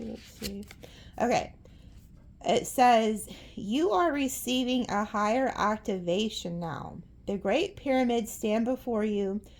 see. Okay. It says, you are receiving a higher activation now. The Great Pyramids stand before you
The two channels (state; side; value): identical; both; correlation 1.00